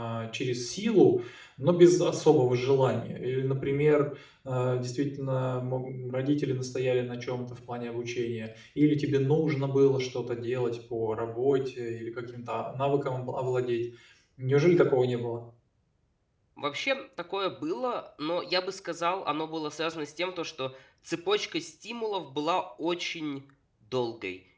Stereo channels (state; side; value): identical; both; correlation 1.00